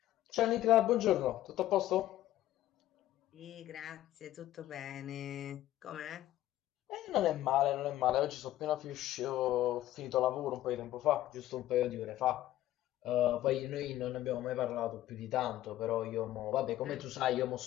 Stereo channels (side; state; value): right; quieter; 14.1 dB